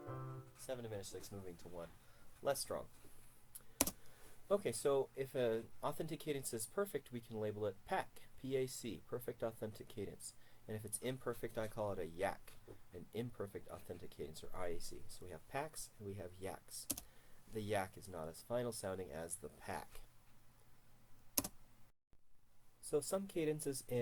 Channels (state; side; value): identical; both; correlation 1.00